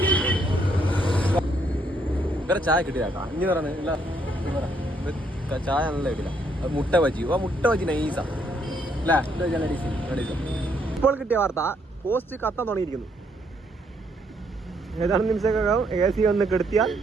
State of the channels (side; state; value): both; normal; correlation 0.71